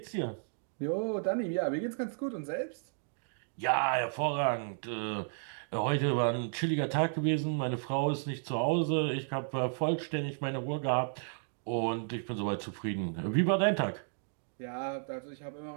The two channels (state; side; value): silent; left; digital silence